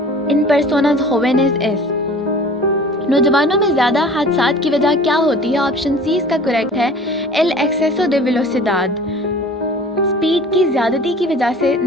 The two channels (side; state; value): both; normal; correlation 0.44